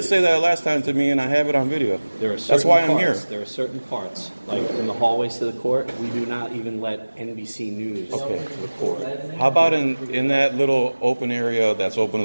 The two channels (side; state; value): both; inverted; correlation -1.00